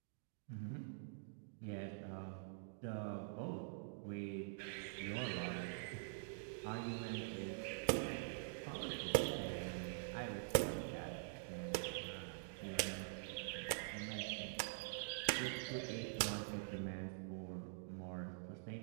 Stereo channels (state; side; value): silent; left; digital silence